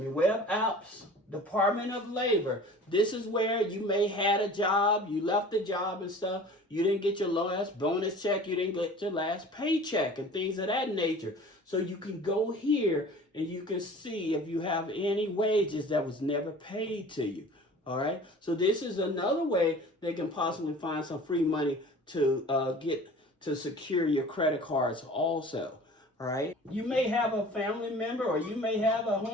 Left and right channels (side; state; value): both; normal; correlation 0.43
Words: Apps, Department of Labor. This is where you may had a job, you left the job and stuff, you didn't get your last bonus check, you didn't get your last paycheck and things of that nature. So you can go here and you can see if you have any wages that was never paid to you. All right. So this is another way they can possibly find some free money to get to secure your credit cards also. All right. You may have a family member or you may have a